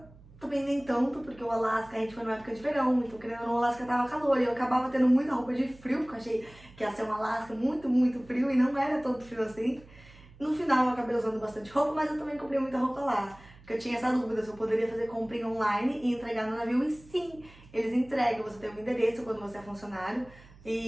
também nem tanto, porque o Alasca a gente foi numa época de verão, então querendo ou não, o Alasca tava calor e eu acabava tendo muita roupa de frio, porque eu achei que ia ser um Alasca muito, muito frio e não era tanto frio assim. No final eu acabei usando bastante roupa, mas eu também comprei muita roupa lá. Porque eu tinha essa dúvida se eu poderia fazer comprinha online e entregar no navio. E sim, eles entregam. Você tem um endereço quando você é funcionário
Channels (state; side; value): noise; right; hum, 23 dB below the sound